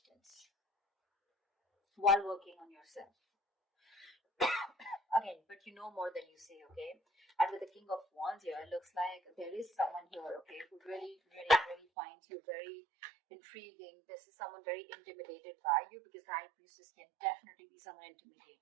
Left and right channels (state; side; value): drops out; left; at 11.8 s